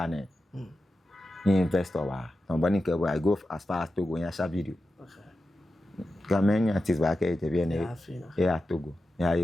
investor I go as far as Togo and share video. Okay. Many artists back at the Togo. Yeah,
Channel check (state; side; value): normal; both; correlation 0.91